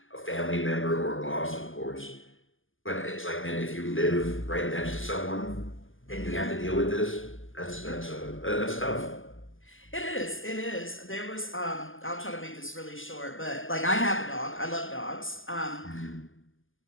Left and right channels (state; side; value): late; right; 0.58 ms